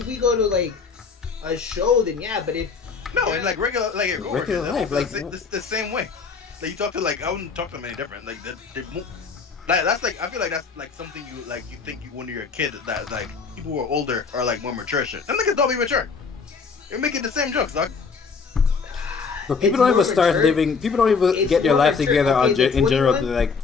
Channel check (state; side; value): quieter; right; 5.2 dB